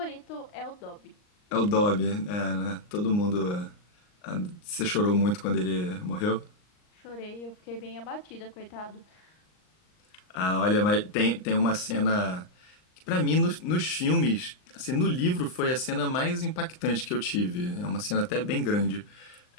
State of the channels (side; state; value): right; late; 39 ms